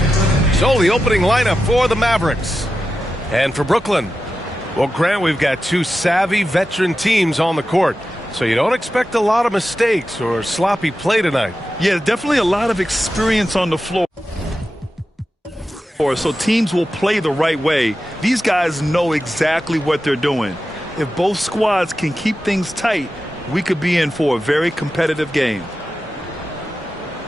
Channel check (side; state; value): both; normal; correlation 0.91